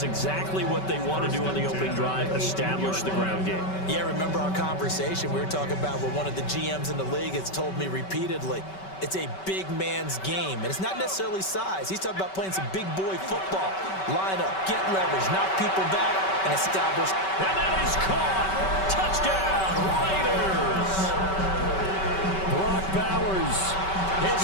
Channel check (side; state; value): right; late; 5.2 ms